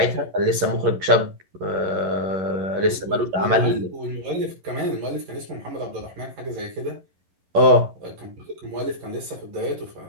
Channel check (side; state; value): left; late; 11 ms